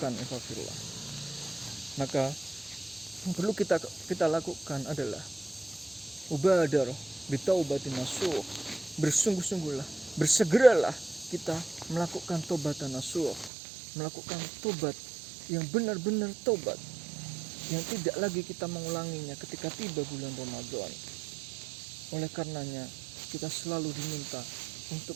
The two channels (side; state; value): left; drops out; at 13.5 s